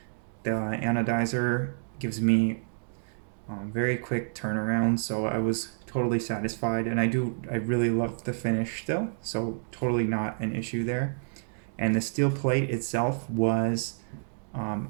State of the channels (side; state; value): left; silent; digital silence